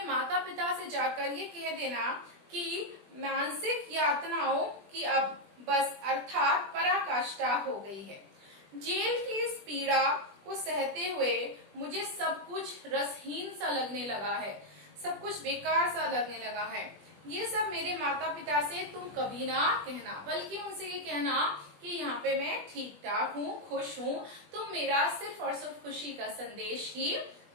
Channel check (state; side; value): late; left; 20 ms